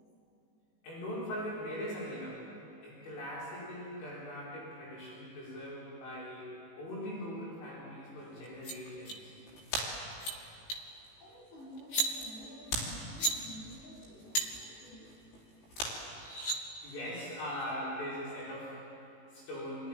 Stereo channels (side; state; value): right; late; 18 ms